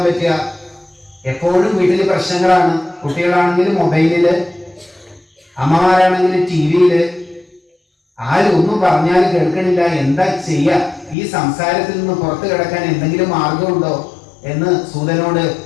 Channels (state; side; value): drops out; right; at 11.2 s